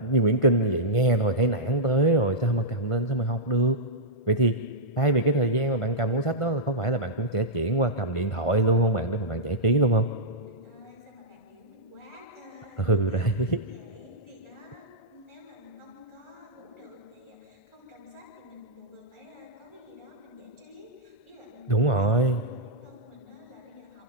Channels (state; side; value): late; right; 1.5 ms